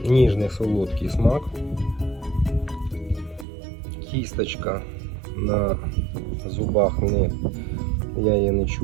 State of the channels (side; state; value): left; drops out; at 3.5 s